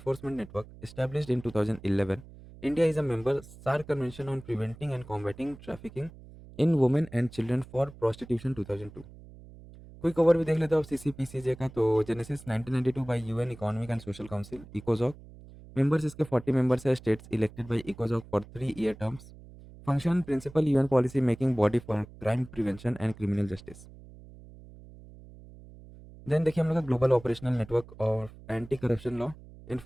network established in 2011। India is a member SAARC convention on preventing and combating trafficking in women and children for prostitution 2002। Quick over भी देख लेते हो अब CCPCJ का, तो genesis 1992 by UN economic and social council इकोजॉक। Members इसके 40 members है, स्टेट्स इलेक्टेड बाय इकोजॉक for 3-year terms. Function principal UN policy making body for crime prevention and criminal justice. Then देखिए हम लोग का ग्लोबल ऑपरेशनल नेटवर्क और anti corruption law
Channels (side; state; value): right; noise; hum, 19 dB below the sound